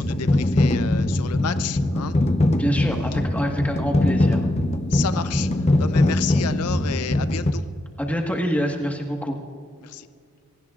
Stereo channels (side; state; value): both; normal; correlation 0.85